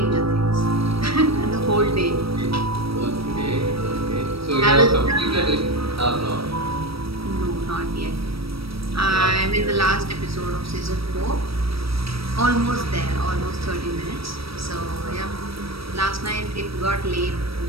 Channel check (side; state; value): left; late; 0.76 ms